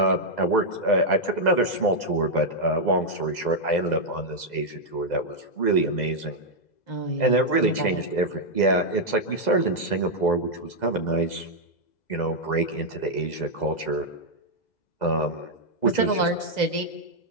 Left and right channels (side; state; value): right; late; 2.0 ms